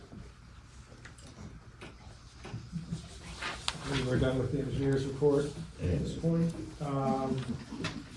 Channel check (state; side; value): identical; both; correlation 1.00